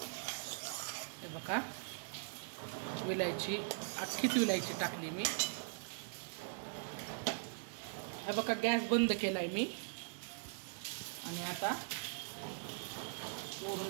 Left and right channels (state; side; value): silent; left; digital silence